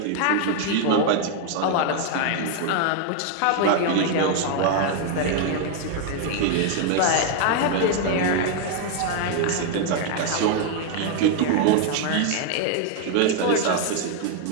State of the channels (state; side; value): different; both; correlation 0.00